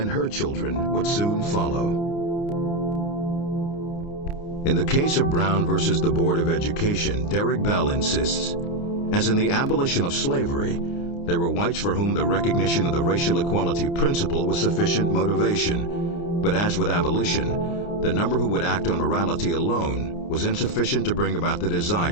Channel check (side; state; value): right; late; 29 ms